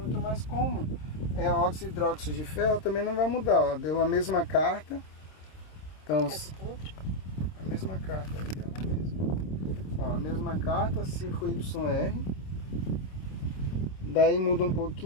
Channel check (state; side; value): late; right; 26 ms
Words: mas como é óxido hidróxido de ferro, também não vai mudar. Ó. Deu a mesma carta. Então, a mesma carta, deu na mesma. Ó, a mesma carta, 5YR. Daí muda um